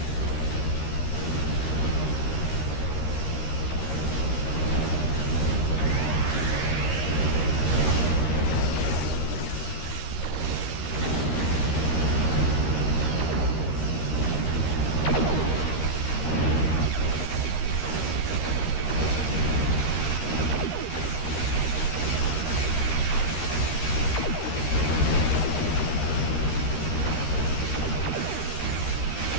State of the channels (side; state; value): right; late; 13 ms